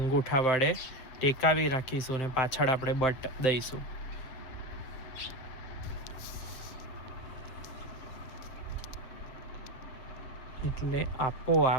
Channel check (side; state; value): right; late; 7.7 ms